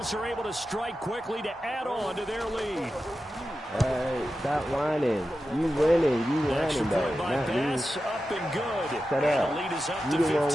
are able to strike quickly to add on to their lead. Hey, stop whining. You winning. You whining, though. Not me. Up and good. Shut up. The lead is up You to the one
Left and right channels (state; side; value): normal; both; correlation 0.92